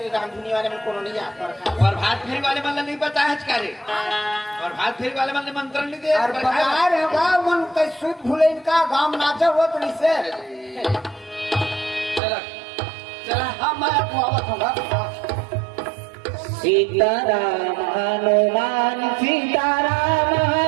रामधुनी वाले में कोनो नहीं आता और भात फेरी वाले मन नहीं पता है करे और भात फेरी वाले मन मंत्र नहीं दे और बकार है बा मन कई सुध भूले इनका गांव नाचा हुआ तो इसे चला चला हाँ मैं आवत होगा सीताराम हनुमान सीताराम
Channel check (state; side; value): drops out; left; at 12.2 s